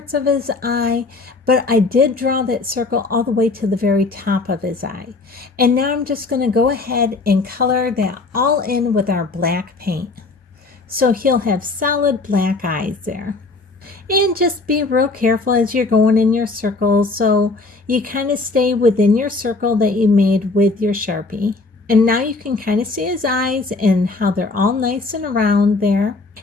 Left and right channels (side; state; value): right; quieter; 3.6 dB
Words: of his eye, but I did draw that circle all the way to the very top of his eye. And now I'm just going to go ahead and color that all in with our black paint. So he'll have solid black eyes there. And just be real careful as you're going in your circles so you kind of stay within your circle that you made with your Sharpie. And now you can kind of see his eyes and how they're all nice and round there.